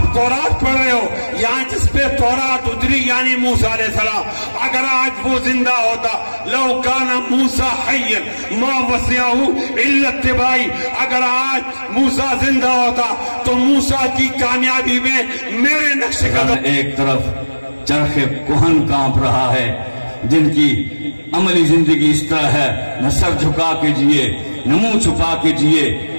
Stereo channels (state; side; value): inverted; both; correlation -1.00